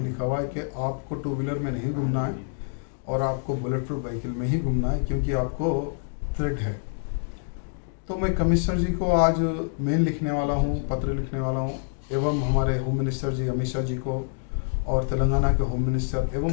लिखा हुआ है कि आपको टू व्हीलर में नहीं घूमना है और आपको बुलेट प्रूफ व्हीकल में ही घूमना है क्योंकि आपको थ्रेट है। तो मैं कमिश्नर जी को आज मेल लिखने वाला हूँ, पत्र लिखने वाला हूँ एवं हमारे होम मिनिस्टर जी अमित शाह जी को और तेलंगाना के होम मिनिस्टर एवं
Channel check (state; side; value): silent; right; digital silence